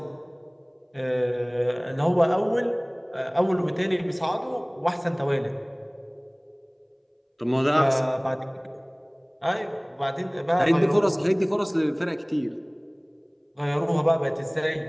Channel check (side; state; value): both; identical; correlation 1.00